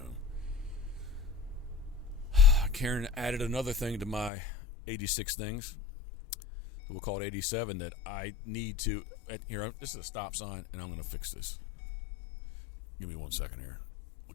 Karen added another thing to my 86 things. We'll call it 87 that I need to. Here, this is a stop sign, and I'm going to fix this. Give me 1 second here.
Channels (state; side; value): drops out; right; at 4.3 s